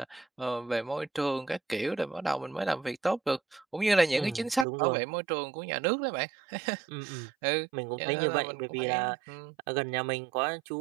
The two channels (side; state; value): left; drops out; at 4.7 s